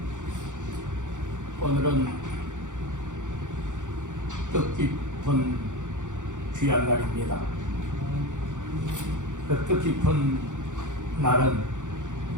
오늘은 뜻깊은 귀한 날입니다. 그 뜻깊은 날은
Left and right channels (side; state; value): left; late; 0.86 ms